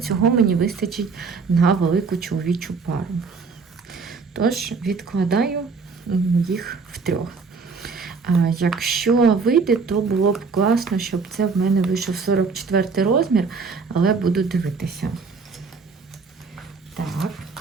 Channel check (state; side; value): quieter; left; 4.8 dB